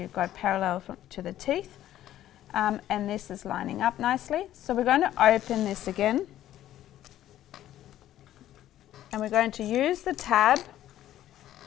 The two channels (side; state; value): right; quieter; 12.7 dB